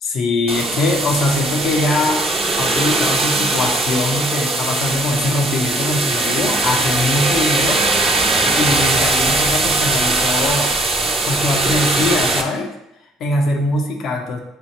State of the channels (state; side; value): normal; both; correlation 0.60